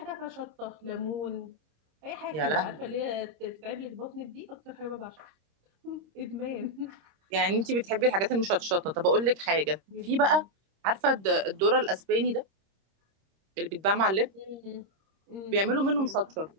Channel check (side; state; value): left; late; 26 ms